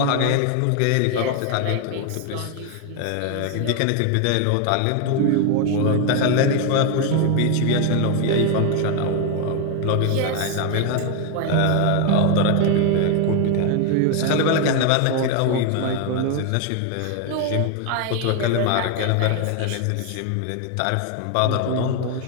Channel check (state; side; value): different; both; correlation 0.01